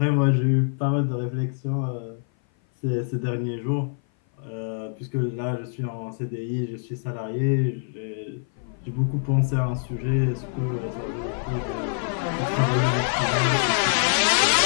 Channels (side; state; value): right; silent; 57 dB below the other